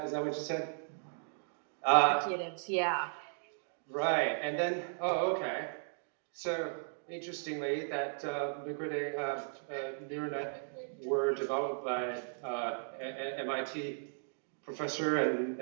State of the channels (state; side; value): silent; left; digital silence